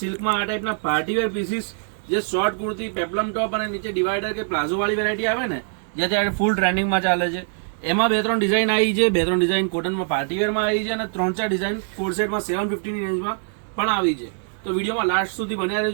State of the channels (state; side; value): silent; left; 57 dB below the other